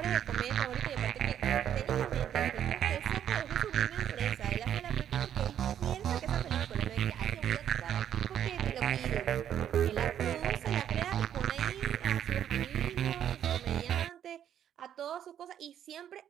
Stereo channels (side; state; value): left; quieter; 10.0 dB